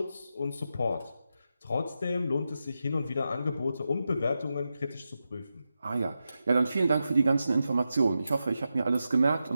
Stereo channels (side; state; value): both; inverted; correlation -0.89